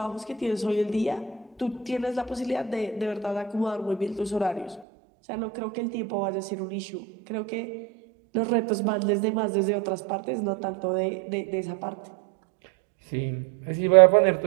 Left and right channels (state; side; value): drops out; left; at 4.9 s